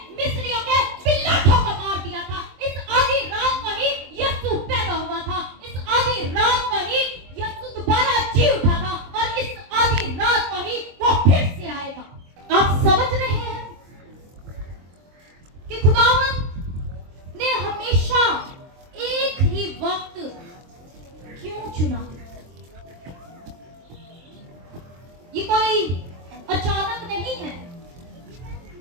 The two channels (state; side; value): late; left; 23 ms